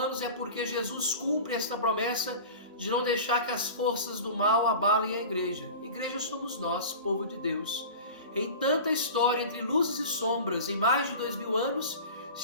é porque Jesus cumpre esta promessa de não deixar que as forças do mal abalem a igreja. Igreja somos nós, povo de Deus. Em tanta história entre luzes e sombras, em mais de 2000 anos,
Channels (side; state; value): both; inverted; correlation -0.35